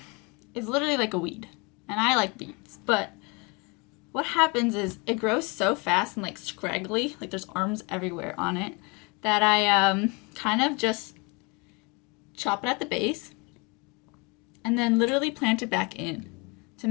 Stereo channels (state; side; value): quieter; right; 29.5 dB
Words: is literally like a weed, and I like weeds, but what happens is it grows so fast and like scraggly, like there's arms everywhere on it, that I kind of just chop it at the base and then literally plant it back in to